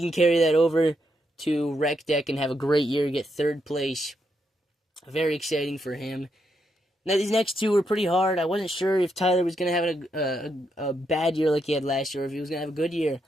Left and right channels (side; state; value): both; normal; correlation 0.80